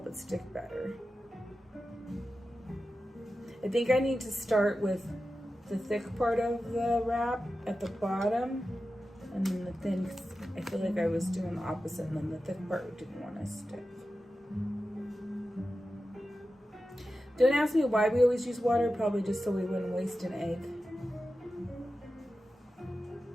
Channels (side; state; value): both; normal; correlation 0.93